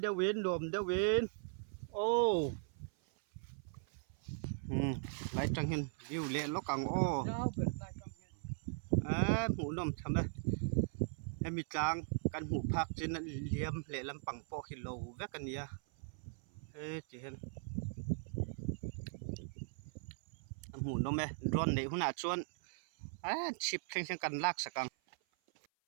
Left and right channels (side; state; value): left; silent; 52 dB below the other